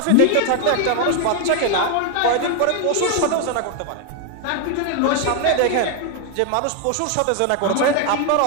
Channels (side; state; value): both; different; correlation 0.01